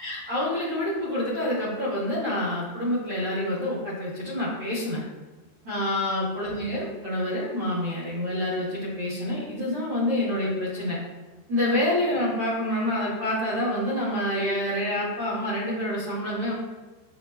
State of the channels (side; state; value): left; late; 13 ms